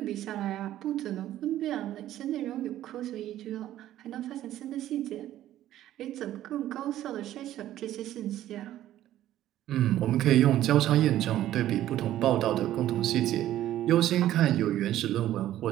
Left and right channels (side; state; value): left; quieter; 13.1 dB